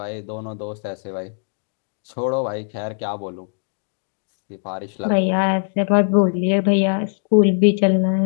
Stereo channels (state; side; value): silent; right; digital silence